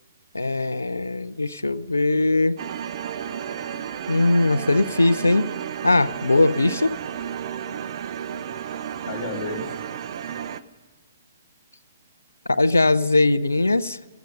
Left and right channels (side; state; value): both; inverted; correlation -0.92